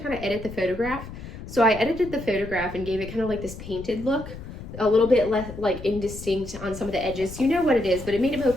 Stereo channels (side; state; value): left; noise; rumble, 12 dB below the sound